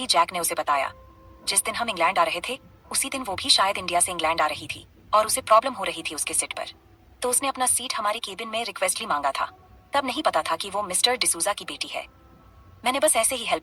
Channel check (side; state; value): both; identical; correlation 1.00